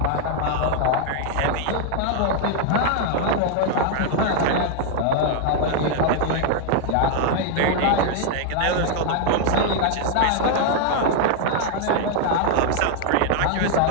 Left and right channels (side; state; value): both; different; correlation 0.00